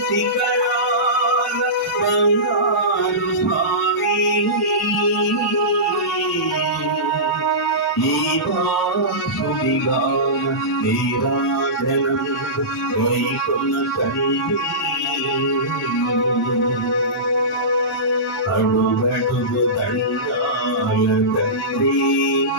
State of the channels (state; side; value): normal; both; correlation -0.19